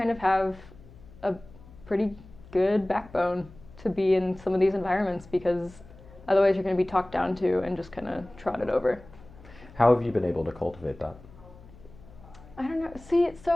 of have a pretty good backbone to be in some of these environments because otherwise you're going to be talked down to and just kind of trotted over. How have you been able to cultivate that? I don't know. See, so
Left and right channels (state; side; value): noise; left; hum, 21 dB below the sound